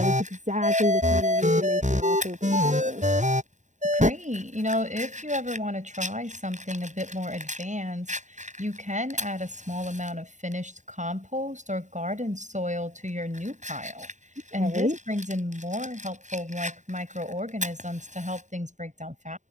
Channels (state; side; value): late; left; 0.35 ms